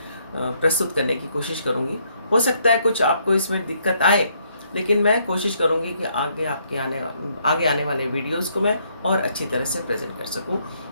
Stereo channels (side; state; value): both; inverted; correlation -0.71